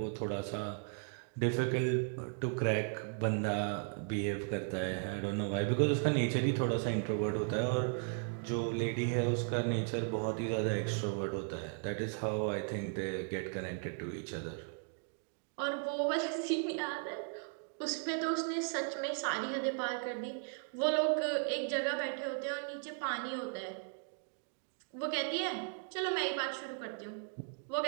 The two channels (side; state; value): left; silent; 53 dB below the other